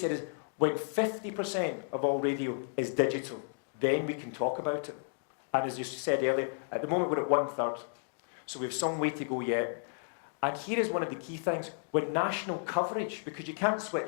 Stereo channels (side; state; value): right; silent; digital silence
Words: is, when 50% of all radio is digital, then we can talk about it. And as you said earlier, at the moment we're at 1/3. So we have some way to go yet. And here is one of the key things. When national coverage, because you can't